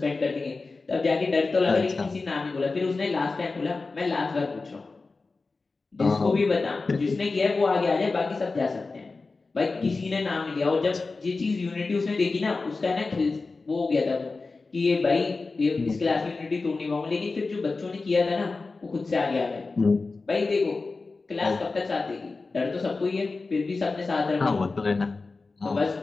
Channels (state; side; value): quieter; right; 3.9 dB